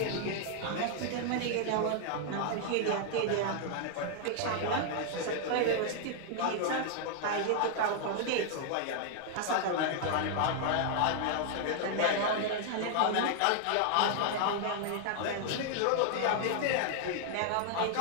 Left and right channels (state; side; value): different; both; correlation 0.00